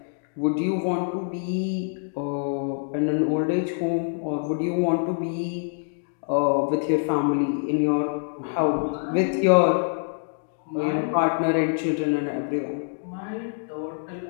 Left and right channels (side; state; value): right; silent; digital silence